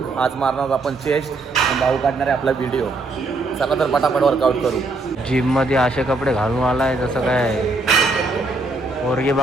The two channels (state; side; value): quieter; left; 3.2 dB